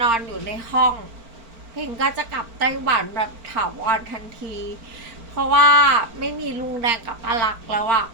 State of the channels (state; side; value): late; left; 4.4 ms